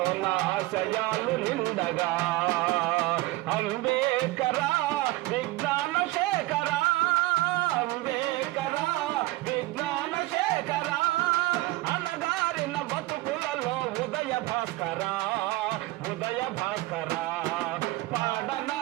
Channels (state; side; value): quieter; left; 19.5 dB